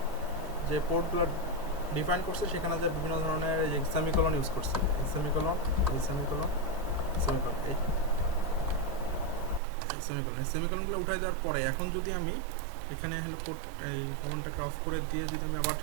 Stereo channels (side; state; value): left; drops out; at 9.6 s